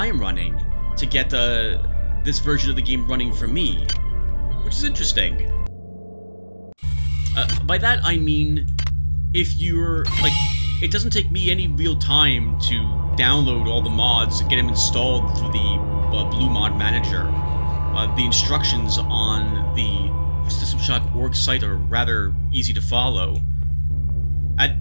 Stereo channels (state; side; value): inverted; both; correlation -1.00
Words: am running to get this version of the game running for me, which is interesting. By that I mean, if you're, like, it doesn't take me any real time to download all the mods and get them installed through the Blue Mod Manager. The instructions on the System Shock org site are rather easy to follow. At